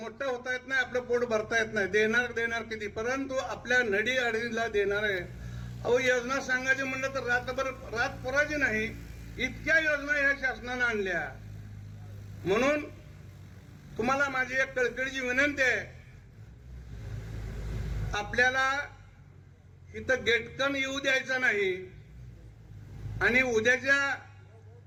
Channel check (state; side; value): identical; both; correlation 1.00